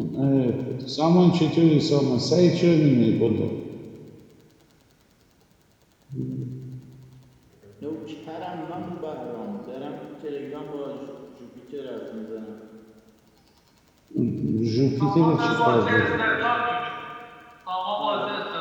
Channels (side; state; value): both; identical; correlation 1.00